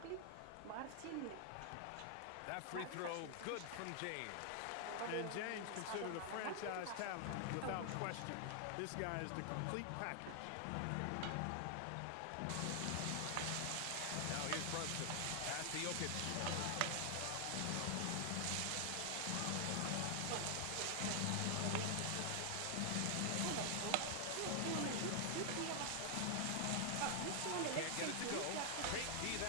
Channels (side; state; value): both; different; correlation 0.00